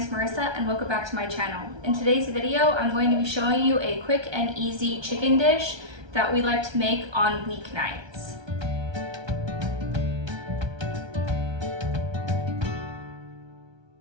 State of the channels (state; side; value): late; left; 1.3 ms